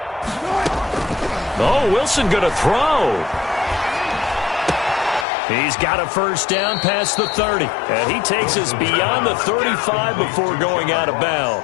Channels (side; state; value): right; drops out; at 5.2 s